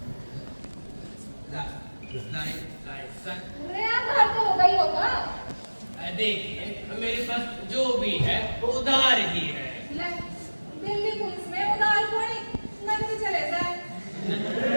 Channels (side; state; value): both; inverted; correlation -1.00